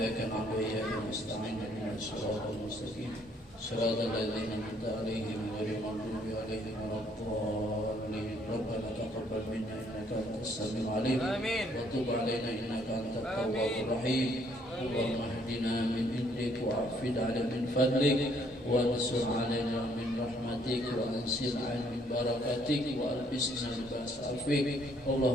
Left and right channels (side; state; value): both; normal; correlation 0.66